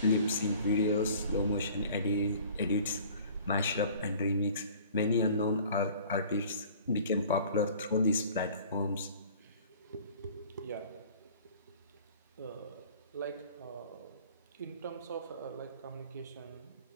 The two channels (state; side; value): inverted; both; correlation -0.49